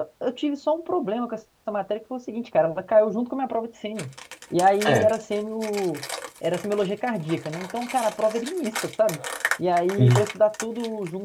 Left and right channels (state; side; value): identical; both; correlation 1.00